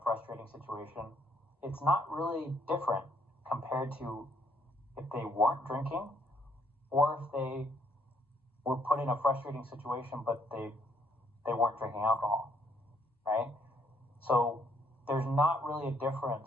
frustrating situation, it's not really different compared to if they weren't drinking, or if they were put in a frustrating situation but they weren't drinking alcohol, right? So there's not really a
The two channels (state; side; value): normal; both; correlation 0.69